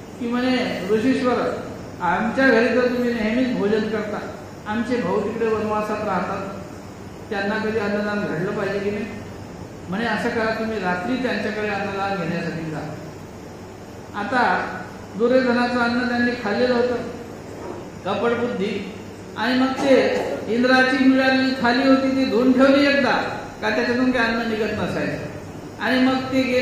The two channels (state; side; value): identical; both; correlation 1.00